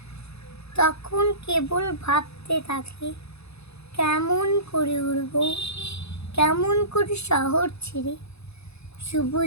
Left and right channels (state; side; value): late; right; 0.79 ms